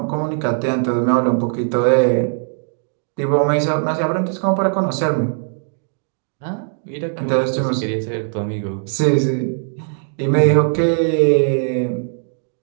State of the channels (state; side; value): silent; left; 66 dB below the other